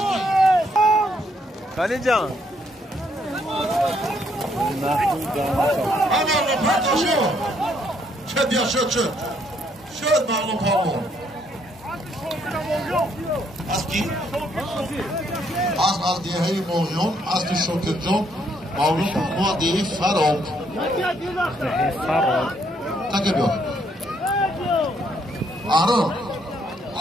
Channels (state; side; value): normal; both; correlation 0.70